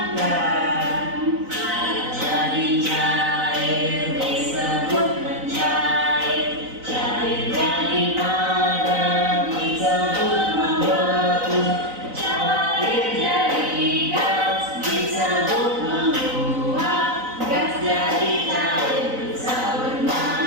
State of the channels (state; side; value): late; left; 3.9 ms